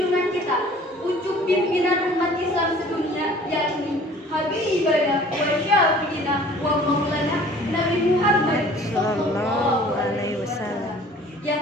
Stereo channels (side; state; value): both; normal; correlation 0.50